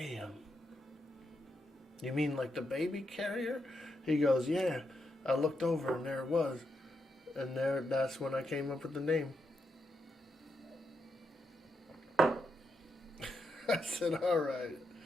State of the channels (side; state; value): both; normal; correlation 0.83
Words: You mean like the baby carrier? He goes, yeah. I looked over and there it was. And that's when I came up with the name. I said, alright.